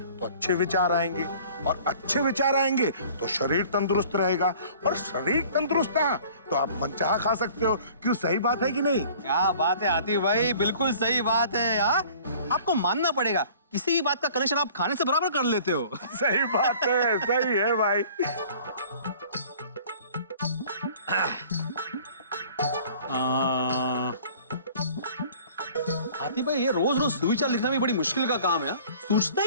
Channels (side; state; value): both; inverted; correlation -0.50